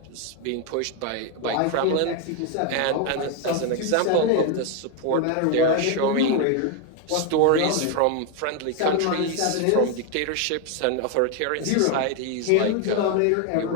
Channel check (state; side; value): different; both; correlation 0.01